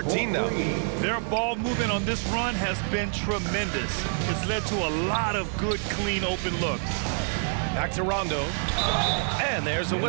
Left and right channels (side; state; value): left; silent; 60 dB below the other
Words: now. Their ball movement on this run has been tremendous. It's led to a lot of good, clean, open looks. Back to Rondo. And there's a